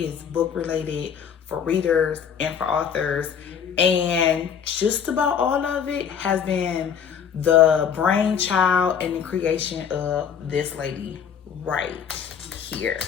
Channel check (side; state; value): right; quieter; 7.7 dB